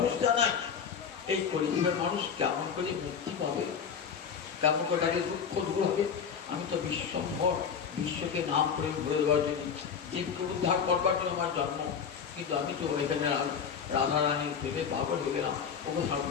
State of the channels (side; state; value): right; quieter; 6.9 dB